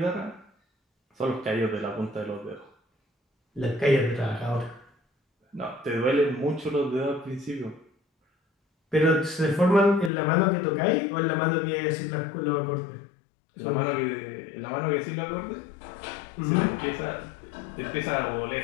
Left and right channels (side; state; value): right; drops out; at 10.1 s